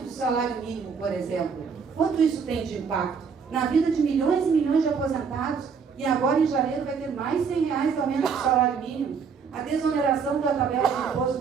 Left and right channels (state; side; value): quieter; left; 6.0 dB